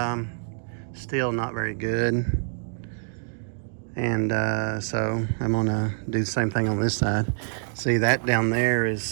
still not very good. And so I'm gonna do the same thing on this side. See, that down there is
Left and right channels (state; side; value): silent; left; digital silence